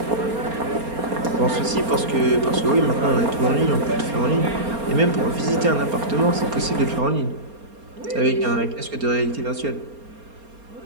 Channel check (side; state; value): left; late; 4.3 ms